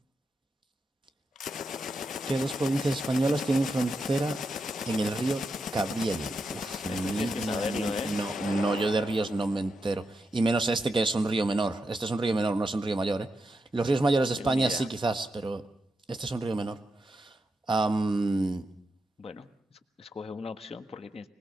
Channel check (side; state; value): both; normal; correlation 0.86